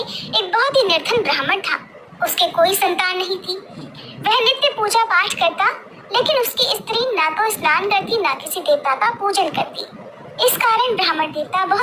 बहुत ही निर्धन ब्राह्मण था। उसके कोई संतान नहीं थी। वह नित्य पूजा पाठ करता, लेकिन उसकी स्त्री ना तो स्नान करती ना किसी देवता का पूजन करती। इस कारण ब्राह्मण देवता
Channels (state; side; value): identical; both; correlation 1.00